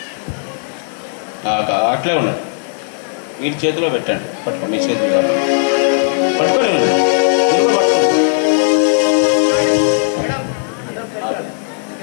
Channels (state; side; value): silent; right; digital silence